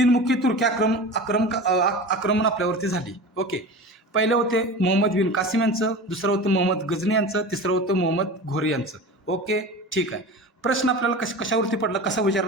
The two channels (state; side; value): normal; both; correlation 0.32